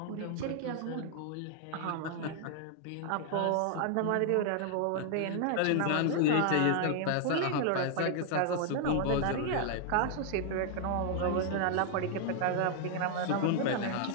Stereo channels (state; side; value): different; both; correlation 0.00